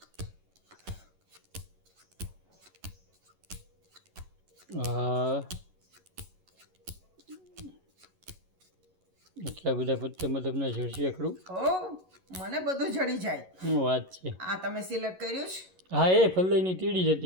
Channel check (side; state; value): left; late; 11 ms